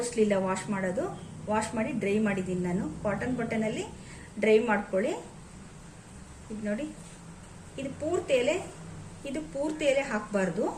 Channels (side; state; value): both; identical; correlation 1.00